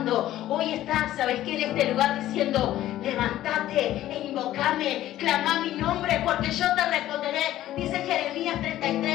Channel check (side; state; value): right; quieter; 13.8 dB